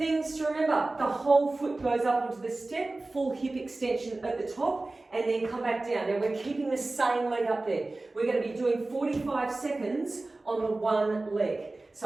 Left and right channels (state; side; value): quieter; left; 3.1 dB